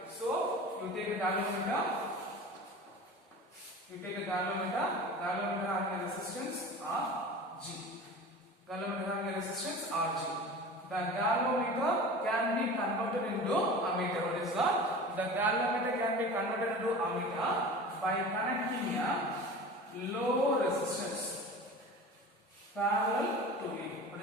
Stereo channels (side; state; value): both; normal; correlation 0.36